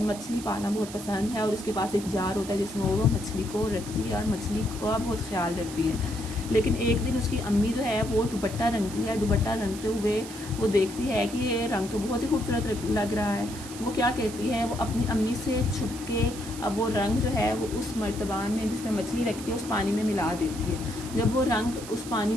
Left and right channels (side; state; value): right; noise; hiss, 13 dB below the sound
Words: पालना बहुत पसंद है और उसके पास एक जार होता है जिसमें वो मछली को रखती है और मछली का बहुत ख्याल रखती है। लेकिन एक दिन उसकी अम्मी जो है वो दुपट्टा रंगती है। दुपट्टा रंगते हुए वो देखती है कि ये रंग तो बहुत ही खूबसूरत लग रहा है। वो क्या कहती है, वो अपनी अम्मी से छुप के अब वो रंग जो है वो उस मर्तबान में जिसमें मछली रखती है उस पानी में मिला देती है। जब वो रंग उस पानी